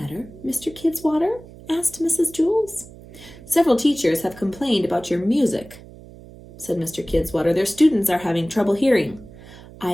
Mr. Kidswater? Asked Mrs. Jules. Several teachers have complained about your music, said Mr. Kidswater. Their students are having trouble hearing.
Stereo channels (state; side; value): noise; right; hum, 19 dB below the sound